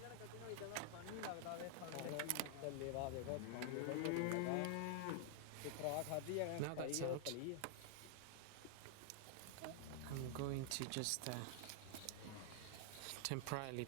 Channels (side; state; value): both; different; correlation 0.00